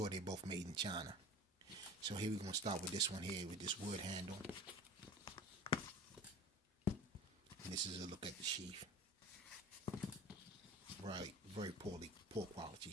they're both made in China. So here we're going to start with this one here with this wood handle. And this is a look at the sheath. Right, very poor quality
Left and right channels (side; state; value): both; normal; correlation 0.38